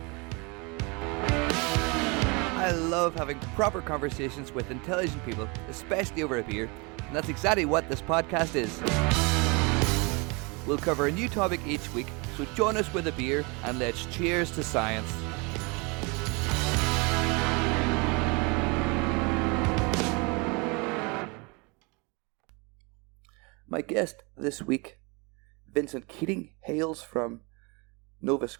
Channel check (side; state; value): left; quieter; 29.1 dB